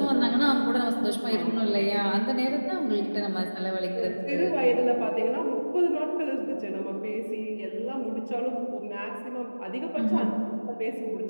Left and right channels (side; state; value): both; inverted; correlation -1.00